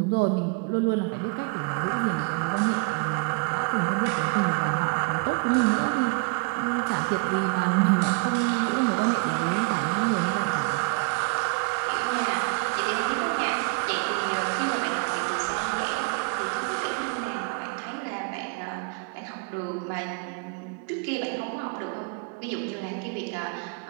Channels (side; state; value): left; quieter; 34.5 dB